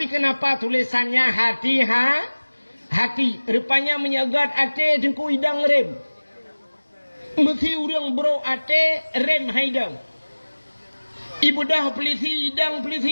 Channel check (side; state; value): both; inverted; correlation -1.00